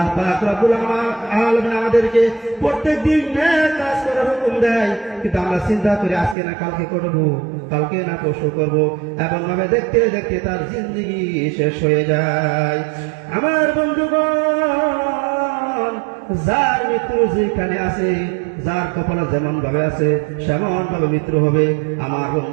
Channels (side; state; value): left; drops out; at 6.4 s